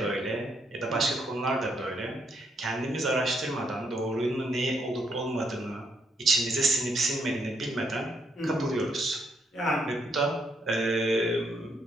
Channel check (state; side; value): normal; both; correlation 0.74